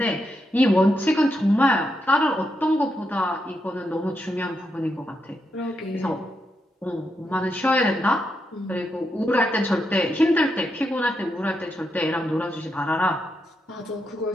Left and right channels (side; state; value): both; normal; correlation 0.83